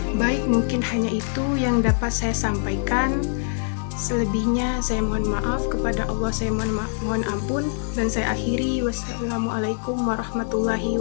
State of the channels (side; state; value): right; silent; 62 dB below the other